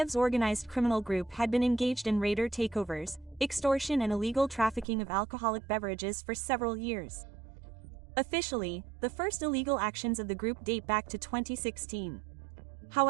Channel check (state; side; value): drops out; left; at 4.9 s